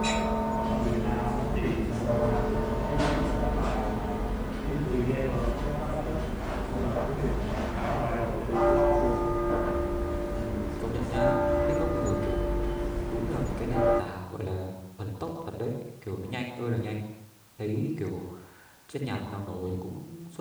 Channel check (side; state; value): both; identical; correlation 1.00